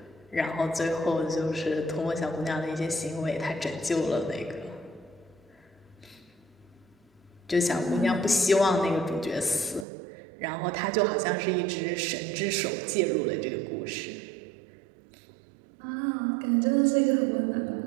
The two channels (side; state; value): left; drops out; at 9.9 s